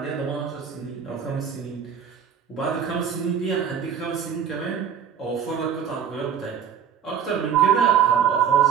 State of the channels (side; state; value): left; quieter; 7.9 dB